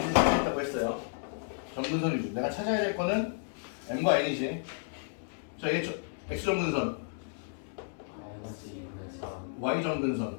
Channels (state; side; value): silent; right; digital silence